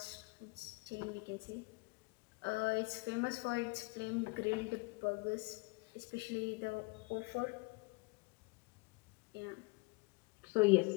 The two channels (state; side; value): quieter; right; 27.2 dB